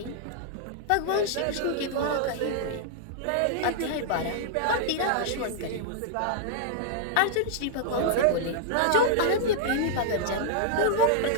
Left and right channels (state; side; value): different; both; correlation -0.01